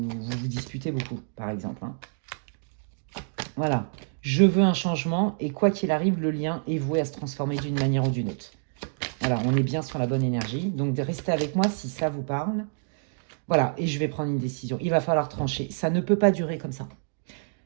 disputez beaucoup, par exemple. Voilà. Je veux un changement, et quoi qu'il arrive, le lien est voué à se transformer d'une manière ou d'une autre. Voilà, on est bien sur la bonne énergie. Donc, restez avec moi si ça vous parle. Voilà, et je vais prendre une décision. Il va falloir trancher. Ça ne peut pas durer comme ça.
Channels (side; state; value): left; silent; digital silence